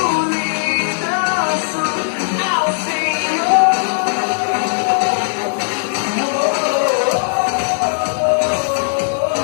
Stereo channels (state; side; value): silent; right; digital silence